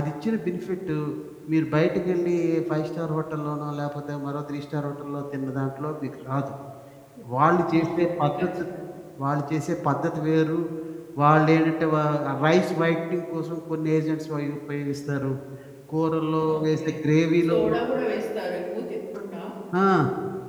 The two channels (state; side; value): identical; both; correlation 1.00